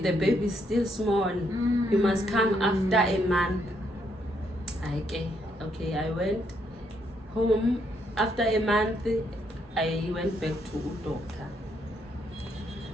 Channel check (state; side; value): normal; both; correlation 0.74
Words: baby is still small. You must come after a month. Okay, I went home. After a month, I went back to a doctor.